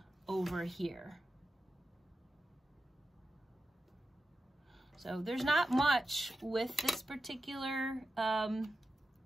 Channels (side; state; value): both; normal; correlation 0.91